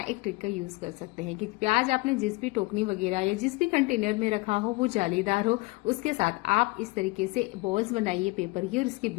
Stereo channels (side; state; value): right; quieter; 24.2 dB